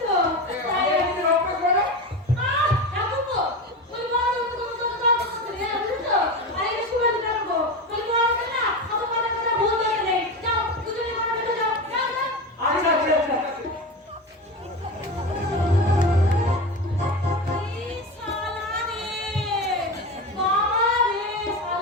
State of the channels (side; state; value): both; normal; correlation 0.23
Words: তো। তাই কি অভ্যাস হলো? ঠাকুরপো, ওই বড় তো করে বুঝছো? আরে এটা শুভেন্দু ঠাকুরপো। ওই বড় না, অত কথা কথা ভুল ধরে নেই। যাও, দুজনে ঘরে ঢুকে যাও। যাও, যাও। আচ্ছা আচ্ছা আচ্ছা। এই শালা রে, বাবা রে,